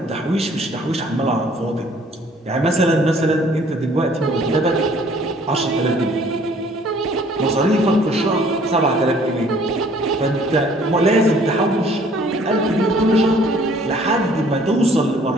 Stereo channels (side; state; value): both; normal; correlation 0.57